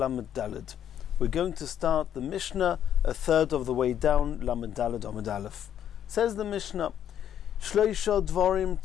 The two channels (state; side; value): quieter; right; 10.0 dB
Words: Daled. We're going to start the Mishnah a third of the way down, Lamed Daled Amud Aleph. Says the Mishnah, Shloisha dvarim